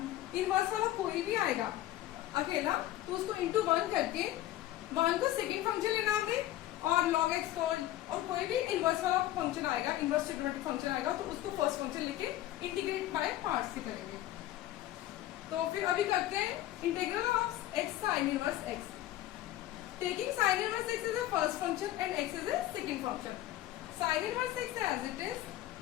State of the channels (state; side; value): quieter; right; 14.4 dB